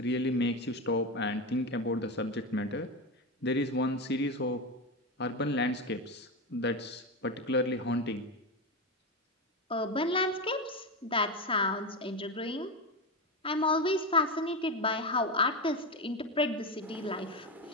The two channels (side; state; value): both; normal; correlation 0.15